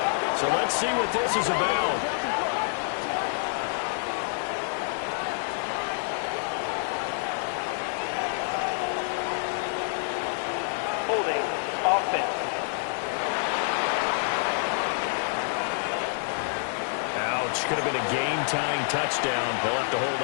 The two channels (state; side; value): silent; right; digital silence